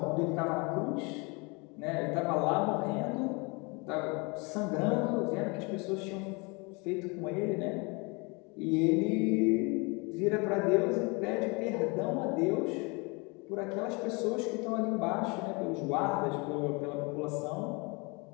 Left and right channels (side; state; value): right; quieter; 29.4 dB